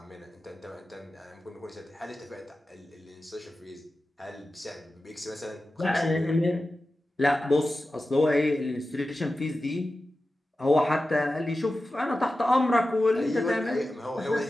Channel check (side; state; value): both; normal; correlation 0.94